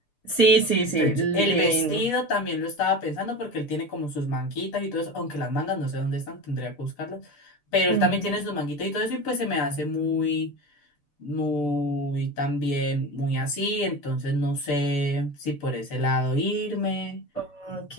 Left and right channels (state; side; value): late; right; 6.8 ms